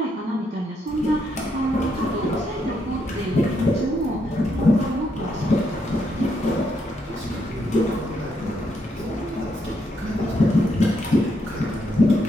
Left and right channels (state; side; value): normal; both; correlation 0.77